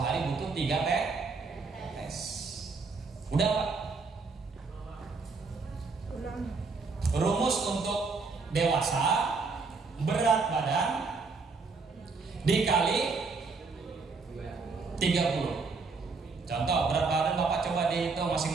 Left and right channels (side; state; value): left; quieter; 4.4 dB